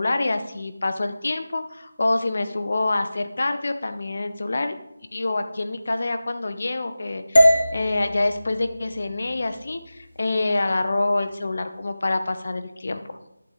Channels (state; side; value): inverted; both; correlation -0.97